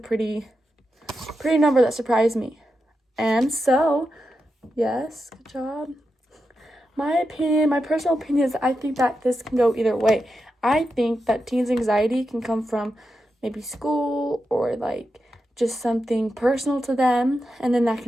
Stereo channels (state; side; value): normal; both; correlation 0.88